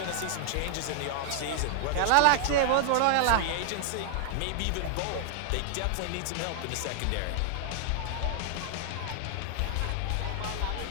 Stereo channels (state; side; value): different; both; correlation 0.00